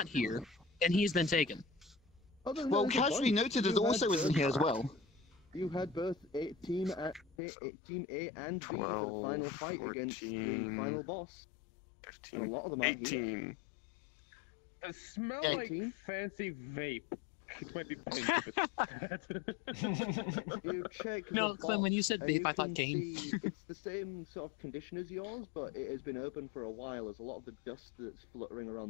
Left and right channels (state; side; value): drops out; right; at 7.4 s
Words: here, and he's been taken. Other than Well, that, there's a Casually bunch. Noted is You also had isn't both- here as well. You had both Team A and B for the 12, final fight against the 14, final boss. And a 15, lot of them aren't here. 18. It smell Yeah, like 18? fancy vape. It might be pink if it's bad. You check No, the Clem, when you said box, and vape, I thought can game. see it's the same sort of condition as yours, but it has been open for a while, as a lot of the dust that's fluttering around